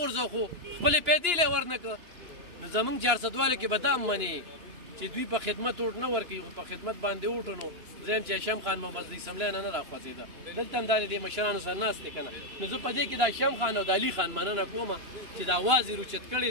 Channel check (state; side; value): late; left; 2.9 ms